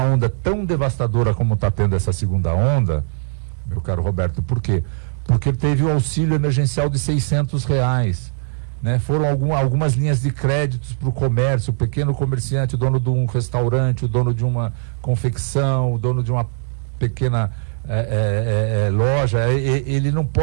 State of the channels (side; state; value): left; silent; digital silence